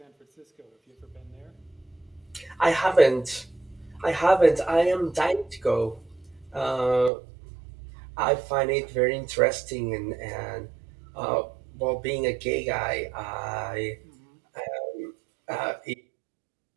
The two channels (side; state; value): left; drops out; at 7.1 s